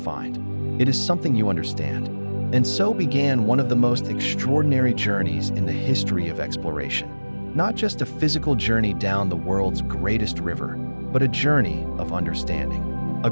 It is something you understand." And so began one of the most extraordinary journeys in the history of exploration. Not just a physical journey down the world's greatest river, but a journey of understanding. A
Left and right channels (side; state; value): both; inverted; correlation -1.00